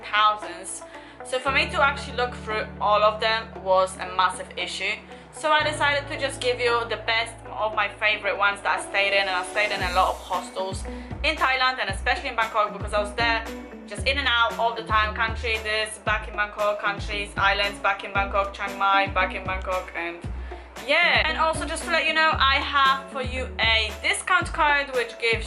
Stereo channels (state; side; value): identical; both; correlation 1.00